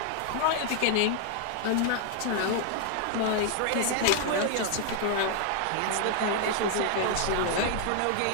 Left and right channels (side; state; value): both; different; correlation 0.00